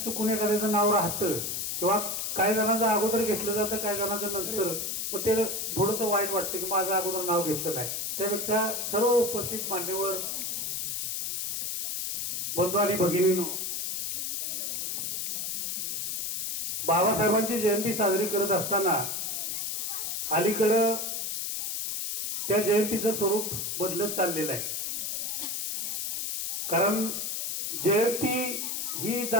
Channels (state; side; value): noise; left; hiss, 2 dB below the sound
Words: चुकून एखाद्याचं नाव राहतं किंवा काही जणांचं अगोदर घेतलं जातं, काही जणांचं नंतर, मग ते थोडंसं वाईट वाटतं की माझं अगोदर नाव घेतलं नाही। त्यापेक्षा सर्व उपस्थित मान्यवर बंधू आणि भगिनींनो, बाबासाहेबांची जयंती साजरी करत असताना अलीकडं त्या जयंतीचं स्वरूप बदलत चाललेलं आहे। कारण जयंती ही